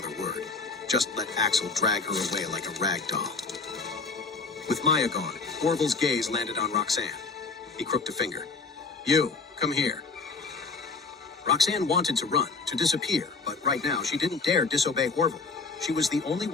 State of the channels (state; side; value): quieter; right; 4.3 dB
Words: word. Just let Axel drag her away like a rag doll. With Maya gone, Orville's gaze landed on Roxanne. He crooked a finger. "You, come here." Roxanne wanted to run, to disappear, but right now she didn't dare disobey Orville. She was the only